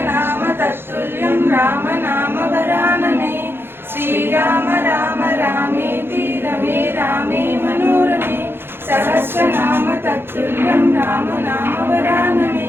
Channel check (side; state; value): left; late; 0.11 ms